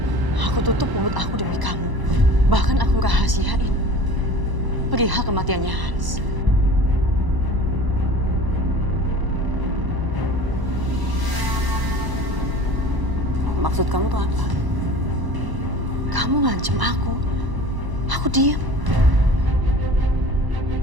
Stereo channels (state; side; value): late; left; 1.0 ms